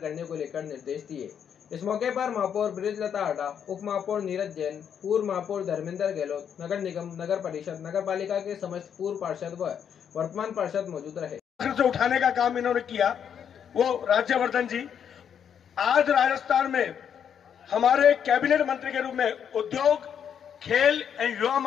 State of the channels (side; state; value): right; quieter; 8.2 dB